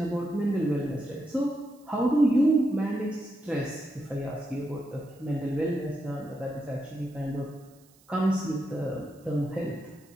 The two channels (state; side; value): noise; right; hiss, 29 dB below the sound